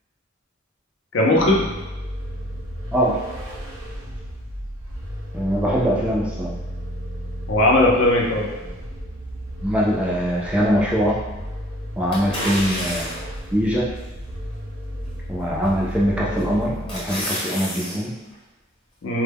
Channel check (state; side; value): normal; both; correlation 0.54